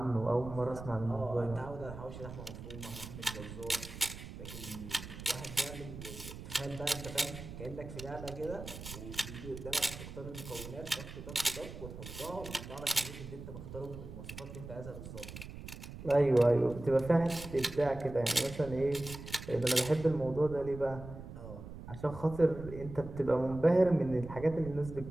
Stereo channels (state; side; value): noise; right; rumble, 11 dB below the sound